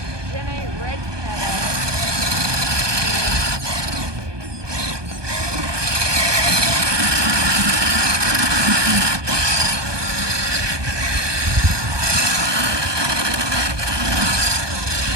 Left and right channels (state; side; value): late; left; 1.2 ms